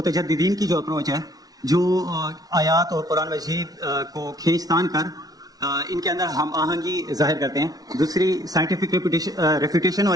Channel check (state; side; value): late; left; 0.18 ms